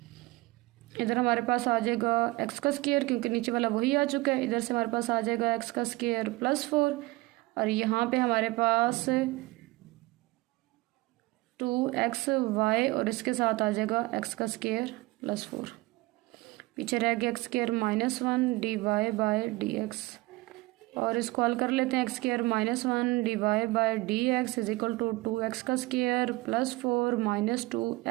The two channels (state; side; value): quieter; left; 21.3 dB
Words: इधर हमारे पास आ जाएगा एक्स का स्क्वायर क्योंकि नीचे वाला वही आ चुका है, इधर से हमारे पास आ जाएगा एक्स का स्क्वायर प्लस 4 और यहाँ पे हमारे पास 2xy और इसके साथ आ जाएगा एक्स का स्क्वायर प्लस 4, पीछे रह गया x square minus 1 d Y by D x और इसको हल कर लेते हैं। X square minus 1 d Y by D x is equal to 2x का स्क्वायर प्लस 4 माइनस